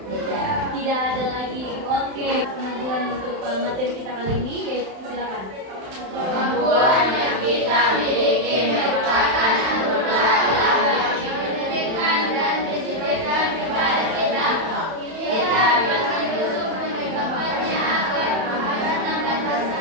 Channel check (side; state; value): left; late; 31 ms